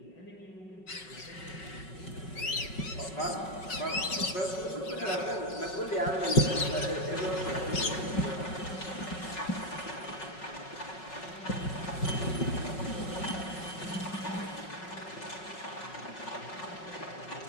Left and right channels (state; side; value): late; right; 5.4 ms